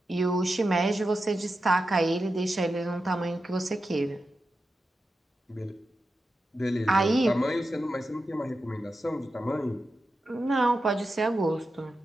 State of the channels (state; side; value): normal; both; correlation 0.90